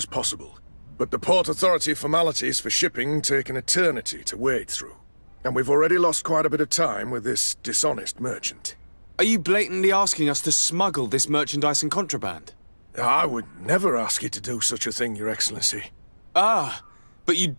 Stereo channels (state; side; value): inverted; both; correlation -1.00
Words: possible. But the Port Authority formalities for shipping take an eternity to wade through. And we've already lost quite a bit of time with this dishonest merchant. Are you blatantly asking us to smuggle this merchandise and contraband? I would never ask you to do such a thing, Your Excellency. Ah, but you